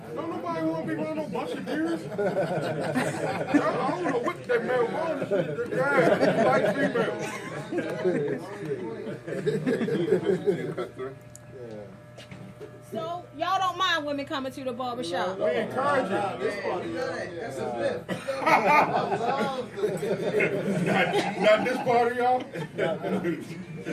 Don't nobody want to be running no bunch of deers. I don't know what that male wants. Yeah, like female. So y'all don't mind women coming to the barbershop? We encourage it. That's a myth. Not this part of y'all.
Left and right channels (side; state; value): both; identical; correlation 1.00